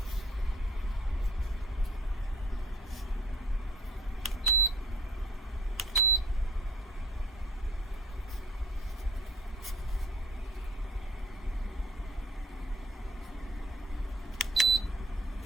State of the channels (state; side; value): normal; both; correlation 0.53